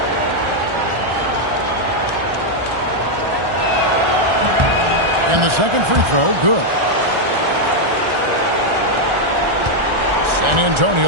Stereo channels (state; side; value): late; left; 1.4 ms